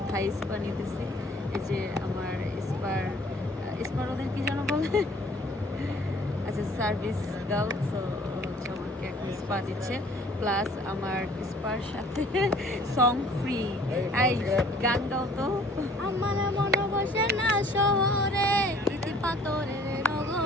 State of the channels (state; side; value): normal; both; correlation 0.55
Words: থাই স্পা নিতেছি। এই যে আমার স্পার ওদের কি যেন বলে, আচ্ছা সার্ভিস গার্ল, তো হচ্ছে আমাকে এখন স্পা দিচ্ছে, প্লাস আমার স্পার সাথে সং ফ্রি। এই গান গাও তো। আমার মন বসে না শহরে, ইতি পাথরের